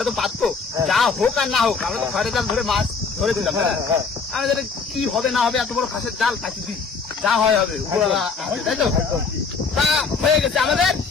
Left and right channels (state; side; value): quieter; right; 5.0 dB